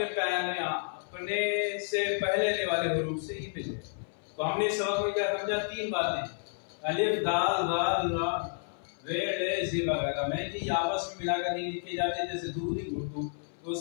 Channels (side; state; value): right; silent; 57 dB below the other